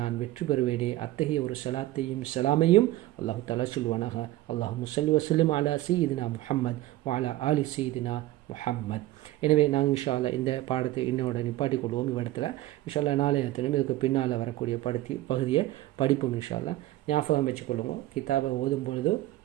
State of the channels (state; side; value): quieter; left; 16.4 dB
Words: வெற்றி பெறுவேனே, அத்தகைய ஒரு ஸலாத்தையும் சலாமையும் அல்லாஹு தஆலா சொல்வானாக. அல்லாஹும்ம ஸல்லி வஸல்லிம் அலா சய்யிதினா முஹம்மத் வ அலா ஆலி சய்யிதினா முஹம்மத். எனவே நாங்கள் இன்ஷா அல்லாஹ் இந்த பாடத்தை இன்னோட நிப்பாட்டிக் கொள்வோம். இவ்விடத்தில் இன்ஷா அல்லாஹ் நாளைய தினம் இதுக்கு பின்னால் வரக்கூடிய பகுதியை படிப்போம். இன்ஷா அல்லாஹ் ஞாபகம் வச்சுக்கொள்ளுங்க. கிதாபை ஓதும் பொழுது